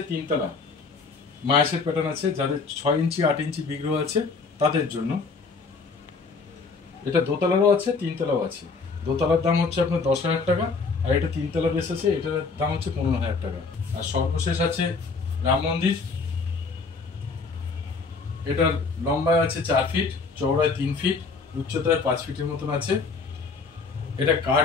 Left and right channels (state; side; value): quieter; right; 4.5 dB